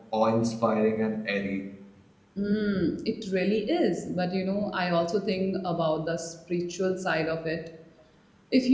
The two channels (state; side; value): identical; both; correlation 1.00